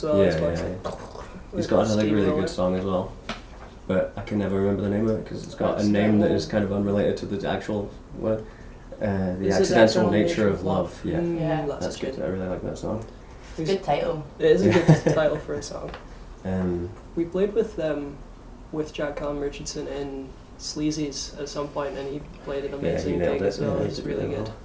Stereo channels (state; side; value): identical; both; correlation 1.00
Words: well. Yeah, It's like- yeah. He's got another really good song as well, but I can never remember the name of it because it's got a name that is kind of unrelated to the actual word. The Is it Accidental Nature of Love. Yeah, Yeah. that's good. I really like that song. Good title. It is a good title for a song. Um, We played with Jack Callum Richardson in Sleazy's at some point, and he played an amazing nailed gig it. as well. Yeah, he It's did really really good. well.